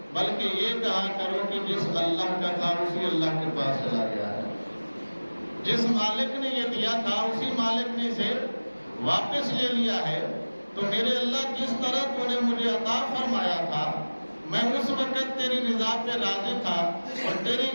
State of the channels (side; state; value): both; inverted; correlation -1.00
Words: بلکہ یہ کہا کرو کہ جس اللہ کا تھا اسی اللہ کے پاس چلا گیا ہے۔ جس مالک نے یہ دیا تھا اسی مالک نے اسے واپس لے لیا ہے۔ تو میرے اللہ جس طرح تو نے مجھے عطا فرمایا تھا میں اس وقت تیری رضا پہ راضی تھا اور تیری